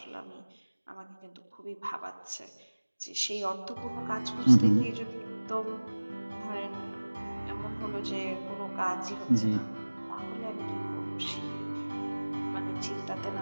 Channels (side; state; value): both; inverted; correlation -1.00